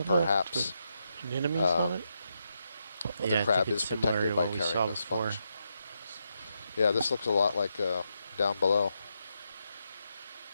perhaps anemones on it? well, Yeah, the crab I think is it's similar protected to by what we carrying saw the before. sponge. Yeah, this looks a lot like down below.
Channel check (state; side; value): inverted; both; correlation -0.83